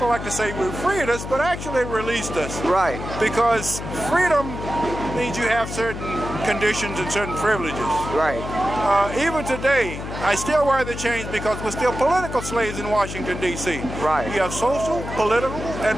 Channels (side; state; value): left; noise; hum, 8 dB below the sound